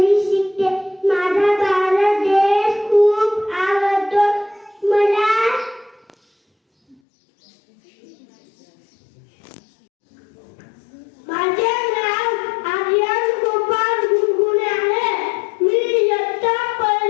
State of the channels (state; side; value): drops out; right; at 7.0 s